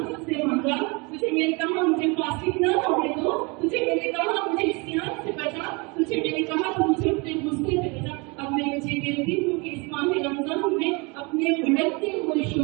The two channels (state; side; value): quieter; left; 28.9 dB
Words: तुझसे मांगा, तुझे मैंने कहा मुझे फासिक न होने दो, तुझे मैंने कहा मुझे इस्यान से बचा, तुझे मैंने कहा तो मुझे अपने गुस्से से बचा। अब मैं तुझे कहती हूँ कि इस माह रमजान में अपने भड़कते हुए